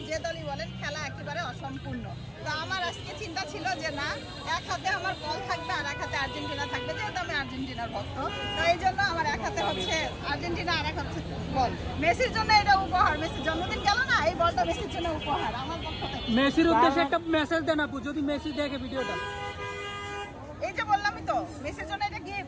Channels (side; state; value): both; identical; correlation 1.00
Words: যে দলই বলেন, খেলা একেবারে অসম্পূর্ণ। তো আমার আজকে চিন্তা ছিল যে না, এক হাতে আমার বল থাকবে আর এক হাতে আর্জেন্টিনা থাকবে, যেহেতু আমি আর্জেন্টিনার ভক্ত। তো এই জন্য আমার এক হাতে হচ্ছে আর্জেন্টিনা আর এক হাতে বল। মেসির জন্য এটা উপহার, মেসির জন্মদিন গেল না, এই বলটা মেসির জন্য উপহার আমার পক্ষ থেকে। মেসির উদ্দেশ্যে একটা মেসেজ দেন আপু, যদি মেসি দেখে ভিডিওটা। এই যে বললামই তো, মেসির জন্য এটা